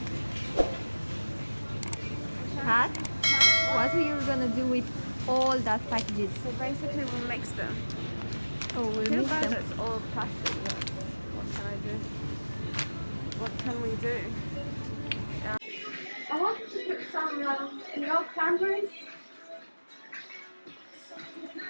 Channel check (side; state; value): both; inverted; correlation -1.00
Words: Huh? What are you gonna do with all that packages? So basically we'll mix them. Oh, we'll Too mix bad them. it's all plastic. What can I do? What can we do? I wanted to put some, cranberries.